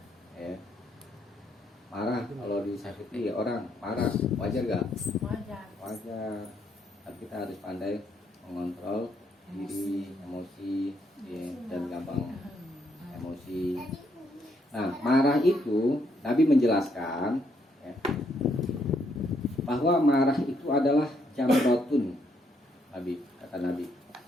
ya. marah kalau disakiti orang marah wajar gak? Wajar. Wajar. Tapi kita harus pandai mengontrol diri, emosi, ya, dan gampang emosi. Nah, marah itu Nabi menjelaskan ya, bahwa marah itu adalah jamrotun. Nabi kata Nabi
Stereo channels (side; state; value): both; normal; correlation 0.73